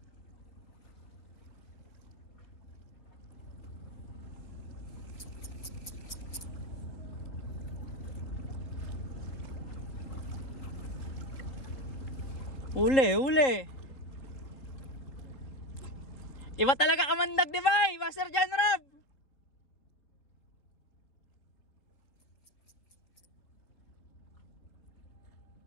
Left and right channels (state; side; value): late; right; 3.8 ms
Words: Uli. Iba talaga kamandag, di ba, Master John Rob?